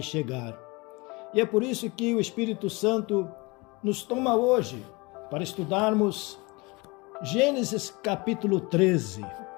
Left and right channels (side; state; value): right; quieter; 25.8 dB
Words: chegar. E é por isso que o Espírito Santo nos toma hoje para estudarmos Gênesis capítulo 13.